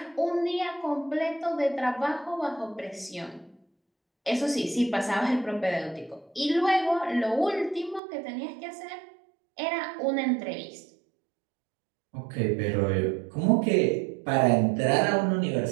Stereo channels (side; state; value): left; drops out; at 8.0 s